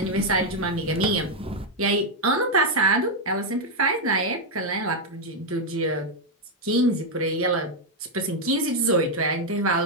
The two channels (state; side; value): normal; both; correlation 0.01